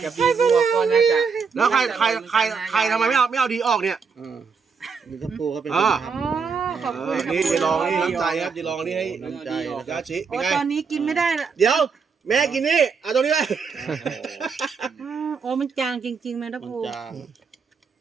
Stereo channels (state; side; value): quieter; left; 5.5 dB